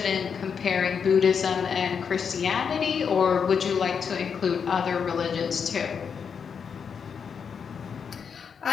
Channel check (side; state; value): right; quieter; 6.6 dB